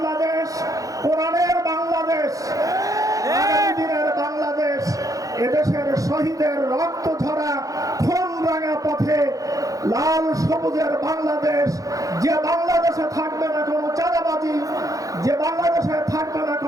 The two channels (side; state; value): left; late; 0.17 ms